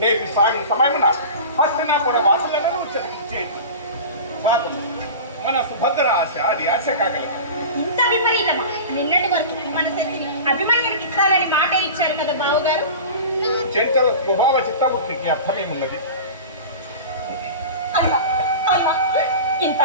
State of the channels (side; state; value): both; inverted; correlation -0.33